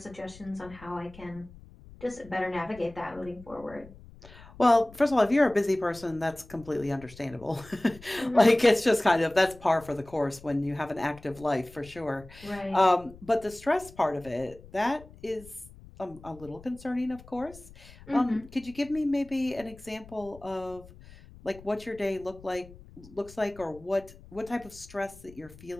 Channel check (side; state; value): left; noise; rumble, 20 dB below the sound